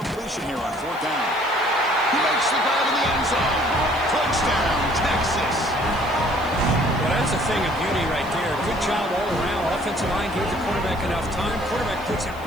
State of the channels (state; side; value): noise; left; hiss, 23 dB below the sound